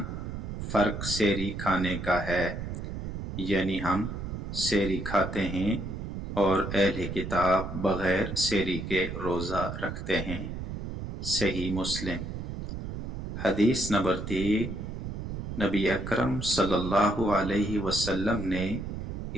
فرق سحری کھانے کا ہے، یعنی ہم سحری کھاتے ہیں اور اہل کتاب بغیر سحری کے روزہ رکھتے ہیں۔ صحیح مسلم۔ حدیث نمبر 3، نبی اکرم صلی اللہ علیہ وسلم نے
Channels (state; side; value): noise; right; rumble, 6 dB below the sound